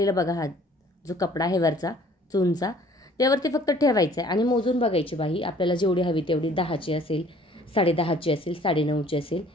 बघा हा जो कपडा आहे वरचा चूनचा त्यावरती फक्त ठेवायचा आहे आणि मोजून बघायची बाही आपल्याला जेवढी हवी तेवढी, 10ची असेल, 10.5ची असेल, 9.5ची असेल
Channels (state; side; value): normal; both; correlation 0.55